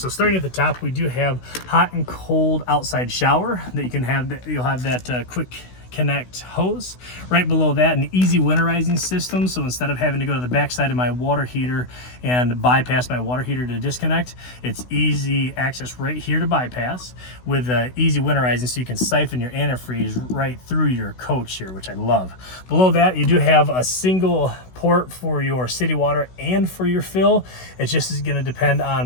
starting at the top, we do have hot and cold outside shower that you can have. You'll have that quick connect hose. Right below that, an easy winterizing system. So instead of having to go to the backside of my water heater and bypass my water heater to disconnect, it's easy access right here to bypass with easy winterizing, so you can siphon your antifreeze right through your coach here, which I love. Below that, you do have a single port for your city water and for your fill. It just is going to depend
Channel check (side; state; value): right; late; 16 ms